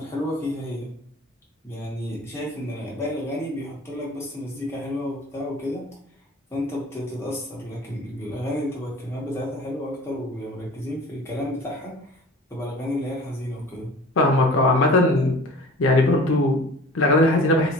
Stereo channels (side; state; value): both; normal; correlation 0.43